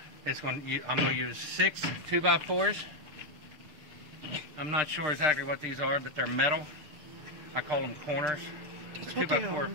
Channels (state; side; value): late; left; 6.6 ms